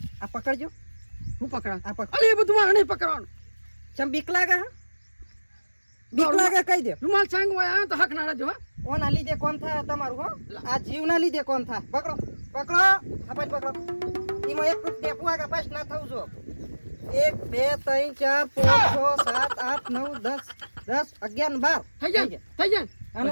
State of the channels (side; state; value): both; inverted; correlation -1.00